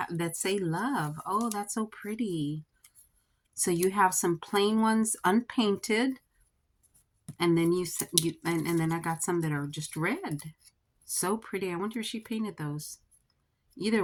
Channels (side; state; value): both; identical; correlation 1.00